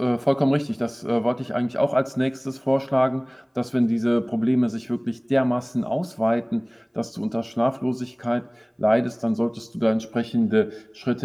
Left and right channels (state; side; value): identical; both; correlation 1.00